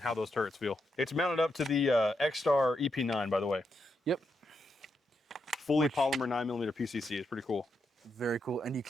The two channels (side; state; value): both; normal; correlation 0.83